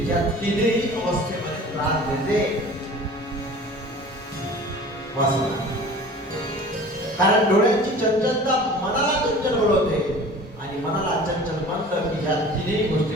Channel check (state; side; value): normal; both; correlation 0.42